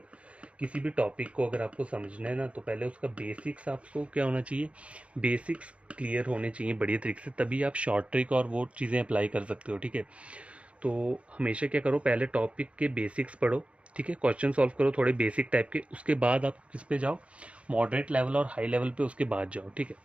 किसी भी टॉपिक को अगर आपको समझना है ना, तो पहले उसका बेसिक्स आपको क्या होना चाहिए, बेसिक्स क्लियर होने चाहिए बढ़िया तरीके से, तभी आप शॉर्ट ट्रिक और वो चीज़ें अप्लाई कर सकते हो, ठीक है। तो हमेशा क्या करो, पहले टॉपिक के बेसिक्स पढ़ो, ठीक है, क्वेश्चन सॉल्व करो थोड़े बेसिक टाइप के, उसके बाद आप किस पे जाओ, मॉडरेट लेवल और हाई लेवल पे उसके बाद जाओ, ठीक है।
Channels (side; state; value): left; late; 0.062 ms